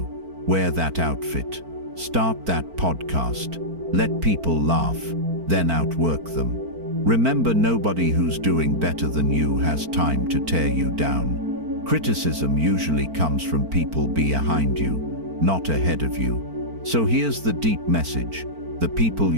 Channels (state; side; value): late; left; 4.4 ms